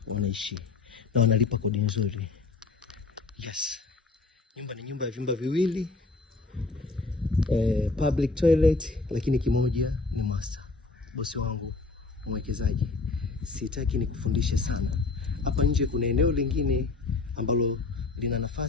wanaishi na wanalipa kodi nzuri. Yes. Nyumba ni nyumba ya vyumba viwili, public toilet, lakini kimoja ni master. Bosi wangu mwekezaji, sitaki nikufundishe sana. Hapa nje kuna eneo lingine ambalo lina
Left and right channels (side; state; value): right; quieter; 3.8 dB